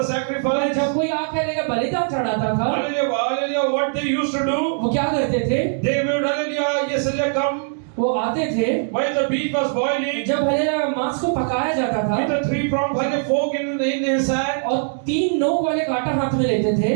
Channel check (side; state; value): left; silent; digital silence